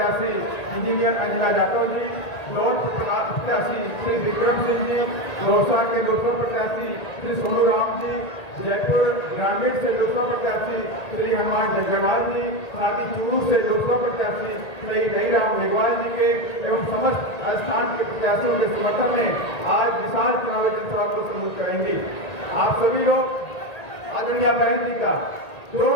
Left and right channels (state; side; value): late; right; 1.8 ms